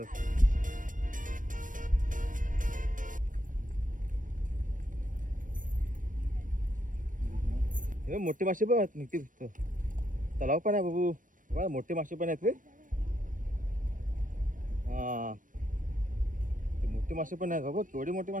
मोठे मासे पण आहेत निघते तलाव पण आहे बाबू बघा मोठे मासे पण आहेत रे हा ते मोठे मासे पण आहेत बाबा केवढे मोठे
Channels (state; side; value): late; left; 0.38 ms